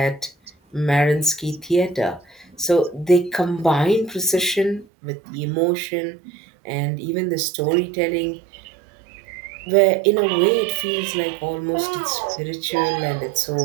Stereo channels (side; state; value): left; drops out; at 4.9 s